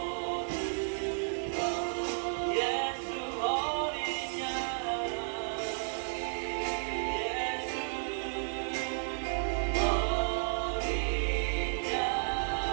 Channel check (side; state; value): left; silent; digital silence